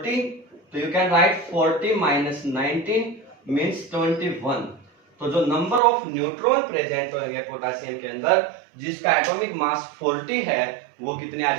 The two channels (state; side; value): drops out; left; at 5.8 s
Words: तो you can write 40 minus 19 means 21। तो जो नंबर ऑफ न्यूट्रॉन प्रेजेंट होंगे पोटेशियम के अंदर जिसका एटॉमिक मास 40 है वो कितने आ